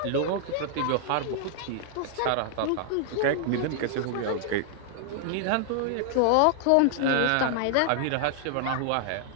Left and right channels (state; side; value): different; both; correlation 0.00